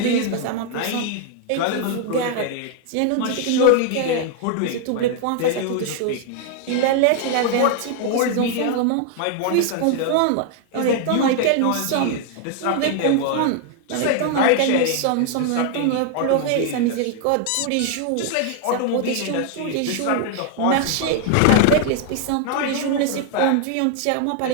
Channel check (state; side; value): different; both; correlation 0.00